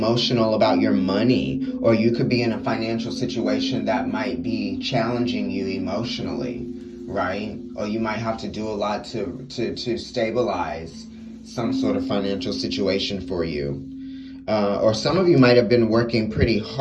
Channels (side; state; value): both; identical; correlation 1.00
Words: about your money, or you could be in a financial situation that might be challenging you emotionally, right? Or you might have to do a lot to stabilize some sort of financial situation for you. Or some of you might have been working pretty